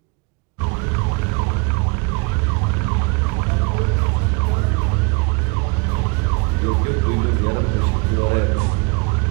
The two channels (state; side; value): quieter; left; 30.6 dB